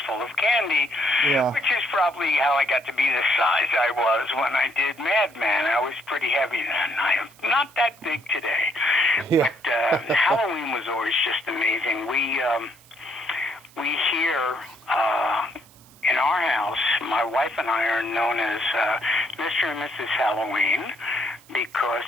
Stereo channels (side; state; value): right; noise; hiss, 26 dB below the sound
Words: full of candy, which is probably how I got to be the size I was when I did Madman. I was pretty heavy then. I am not that big today. Yeah. But Halloween was always just amazing. We here in our house, my wife and I are known as Mr. and Mrs. Halloween, because